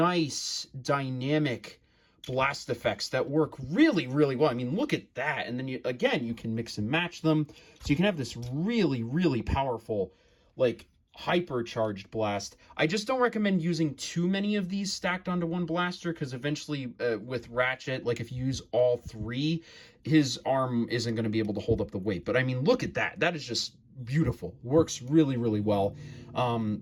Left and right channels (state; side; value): identical; both; correlation 1.00